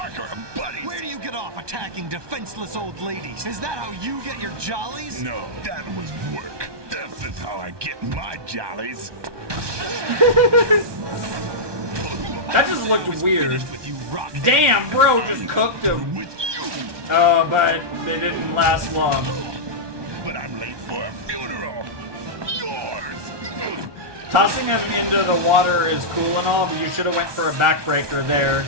are buddies. Where do you get off attacking defenseless old ladies? Is that how you get your jollies? No, that was work. This is how I get my jollies. That just looked weird. With you, Damn, bro, just cooked him. Oh, but they didn't last long. But I'm late for a funeral. Yours. Tossing him into the water is cool and all, but you should have went for a backbreaker there.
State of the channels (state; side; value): late; left; 1.2 ms